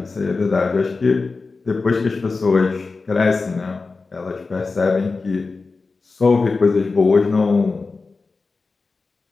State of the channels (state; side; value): quieter; right; 4.0 dB